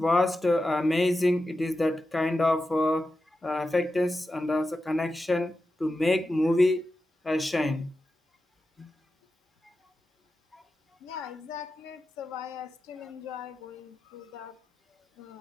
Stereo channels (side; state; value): both; normal; correlation 0.91